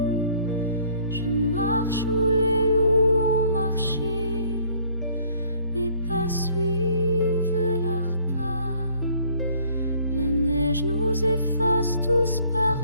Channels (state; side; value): inverted; both; correlation -0.59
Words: Nous efface tous